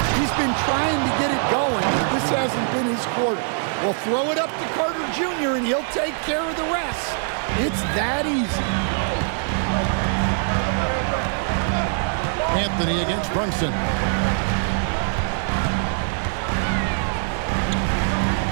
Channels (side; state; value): left; silent; 64 dB below the other